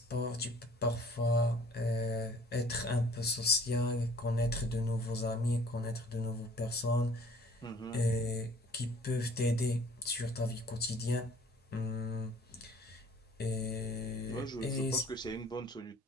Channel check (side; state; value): both; normal; correlation 0.52